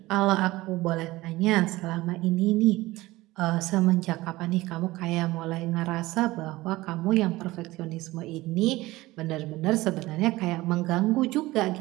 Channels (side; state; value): left; quieter; 19.0 dB